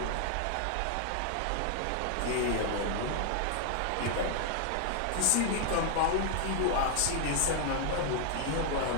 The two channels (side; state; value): both; different; correlation 0.00